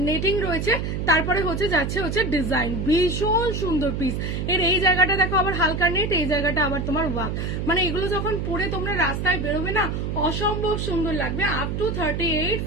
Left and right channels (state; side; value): noise; right; hum, 2 dB below the sound